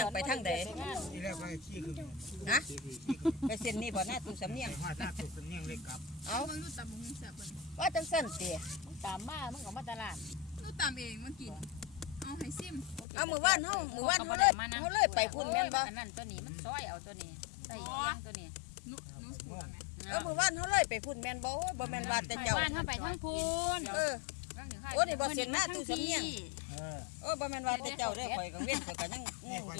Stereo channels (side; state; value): right; drops out; at 13.1 s